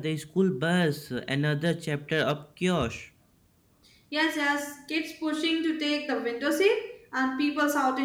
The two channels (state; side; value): identical; both; correlation 1.00